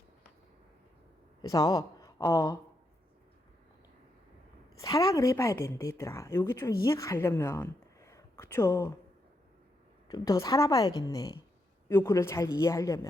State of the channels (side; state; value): both; normal; correlation 0.81